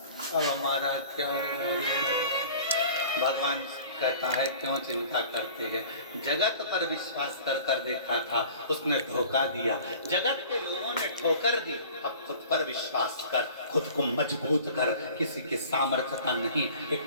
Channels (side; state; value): both; inverted; correlation -0.45